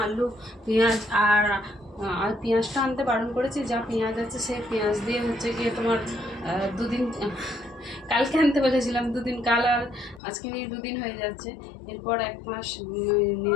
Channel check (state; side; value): drops out; right; at 10.2 s